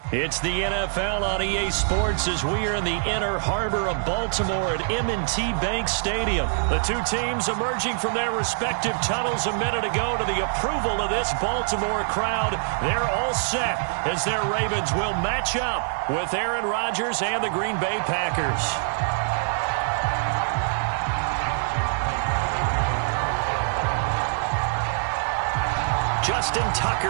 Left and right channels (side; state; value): left; silent; digital silence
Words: It's the NFL on EA Sports as we are in the inner harbor of Baltimore at M&T Bank Stadium. The two teams emerging from their respective tunnels a minute ago to the approval of this Baltimore crowd. They're all set as their Ravens will match up with Aaron Rodgers and the Green Bay Packers. Justin